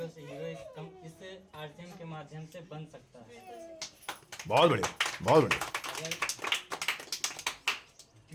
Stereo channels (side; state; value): both; identical; correlation 1.00